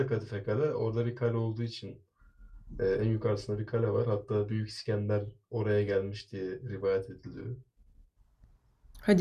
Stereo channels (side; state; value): both; identical; correlation 1.00